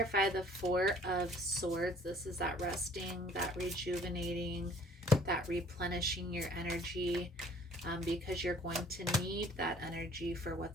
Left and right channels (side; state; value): both; normal; correlation 0.54